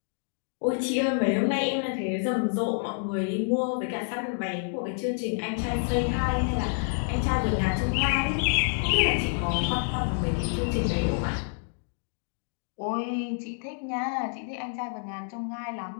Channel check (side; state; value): right; silent; 59 dB below the other